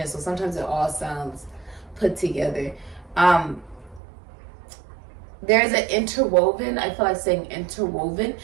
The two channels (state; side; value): drops out; left; at 4.0 s